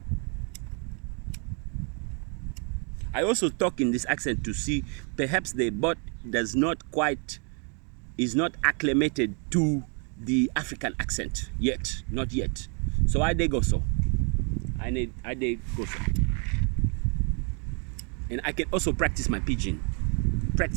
I also talk in this accent to see perhaps the bot is not acclimated to the African accent yet, not yet. So I dey go so. And I can also practice my pidgin.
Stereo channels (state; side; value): quieter; left; 38.4 dB